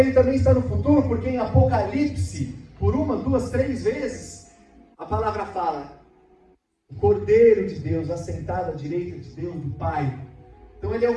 também está no futuro, porque em Apocalipse, por 1, 2, 3 vezes, a palavra fala, o Cordeiro de Deus assentado à direita de Deus, do Pai. Então ele é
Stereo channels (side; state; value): both; identical; correlation 1.00